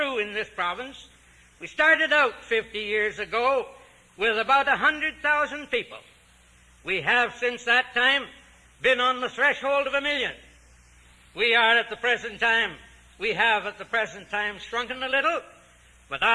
in this province. We started out 50 years ago with about 100,000 people. We have since that time been on the threshold of 1 million. We have at the present time shrunken a little, but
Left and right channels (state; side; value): identical; both; correlation 1.00